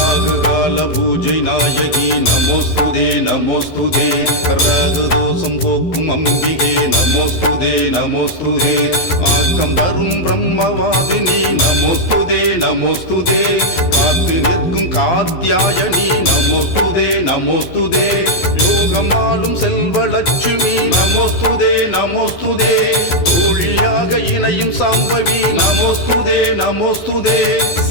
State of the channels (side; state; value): right; late; 12 ms